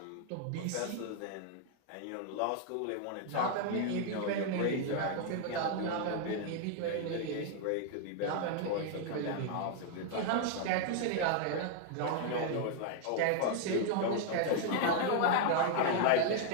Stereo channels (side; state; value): both; different; correlation 0.00